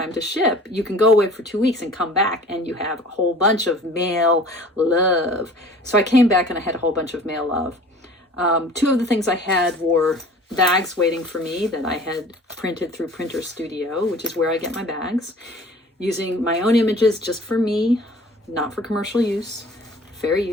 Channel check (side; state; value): both; normal; correlation 0.46